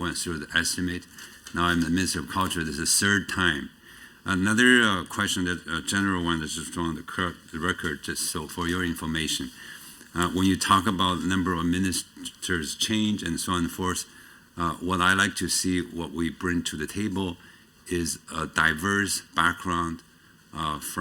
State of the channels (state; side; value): identical; both; correlation 1.00